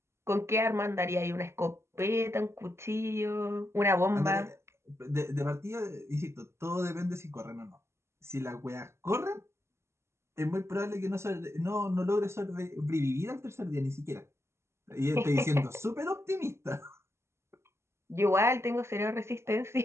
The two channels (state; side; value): late; left; 0.13 ms